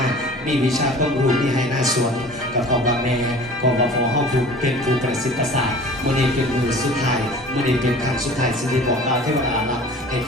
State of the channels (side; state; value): both; normal; correlation 0.43